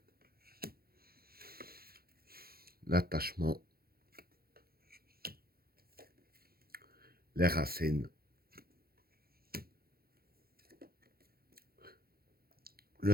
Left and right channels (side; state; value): left; late; 0.44 ms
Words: l'attachement, les racines, le